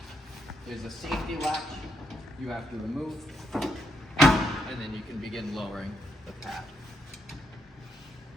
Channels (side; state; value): both; normal; correlation 0.78